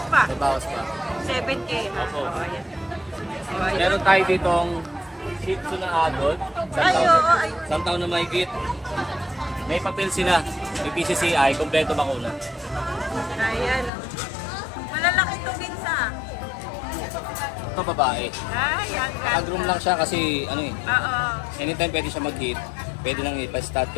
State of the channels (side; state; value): right; drops out; at 13.9 s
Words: pa? May bawas pa. 7K, ha? Opo. Oh, ayan. Oh, ayan. Meron tayo ditong Shih Tzu na adult. Ay, oo, ay. Isang taon na mahigit. May papel sila. May PCCI, kompleto bakuna. Ayan. Malalaki to, Vince, ha? Ito babae. Ay, ang ganda. Nag-groom lang siya kasi ano eh. Oo. Anytime pwede siya mag-hit. Pwede nang ipa-start